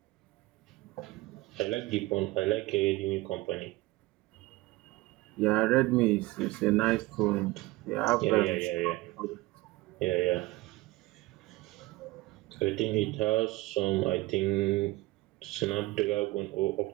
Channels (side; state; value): left; quieter; 19.8 dB